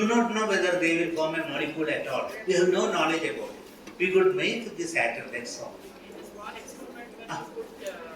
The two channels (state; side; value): identical; both; correlation 1.00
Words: not know whether they will form a molecule at all. We have no knowledge about it. We could make this atom, that's all. In this one experiment, when you put